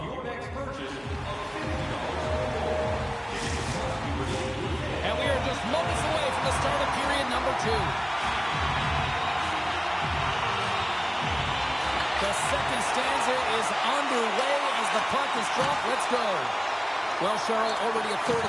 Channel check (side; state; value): both; identical; correlation 1.00